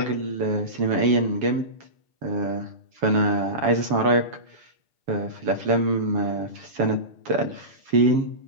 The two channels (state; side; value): late; left; 7.3 ms